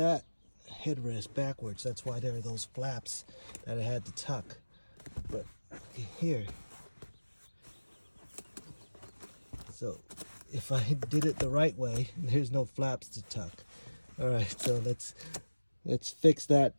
headrest backwards. That's why there are those flaps that I had to tuck. But here, so if I did it the right way, there's no flaps to tuck. All right, so let's fix that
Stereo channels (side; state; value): both; inverted; correlation -1.00